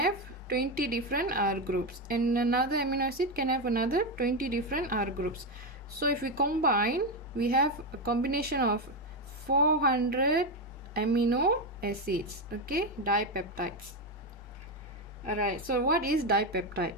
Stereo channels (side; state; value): both; normal; correlation 0.10